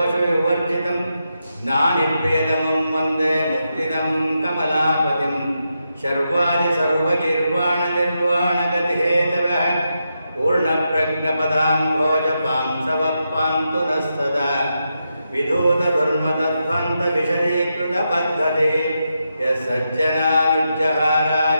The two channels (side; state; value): both; inverted; correlation -0.85